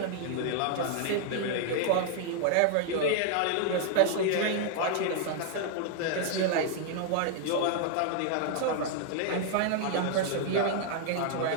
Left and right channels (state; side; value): different; both; correlation 0.00